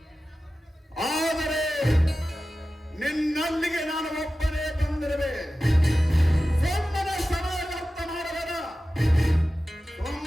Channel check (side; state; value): both; normal; correlation 0.94